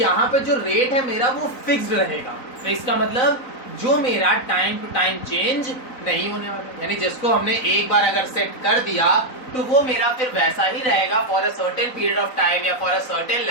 यहाँ पे जो रेट है मेरा वो फिक्स्ड रहेगा। फिक्स का मतलब जो मेरा टाइम टू टाइम चेंज नहीं होने वाला, यानी जिसको हमने एक बार अगर सेट कर दिया तो वो मेरा फिर वैसा ही रहेगा for a certain period of time या फॉर अ सर्टेन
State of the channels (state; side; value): late; right; 3.9 ms